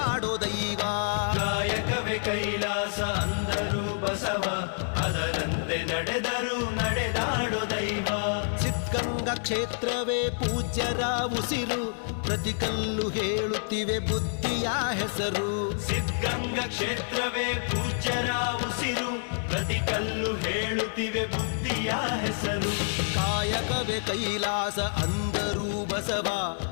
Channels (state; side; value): silent; right; 59 dB below the other